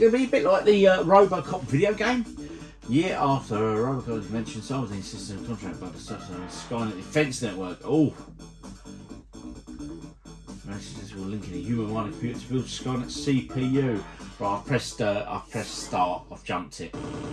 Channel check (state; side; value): identical; both; correlation 1.00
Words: to be a bit like the RoboCop video game? Year after RoboCop was mentioned, so was insisted on contract about the Skynet Defense Network. Oh. Messages will link in a human-minded computer to build Skynet CPU. Right, I've pressed start. I've jumped it.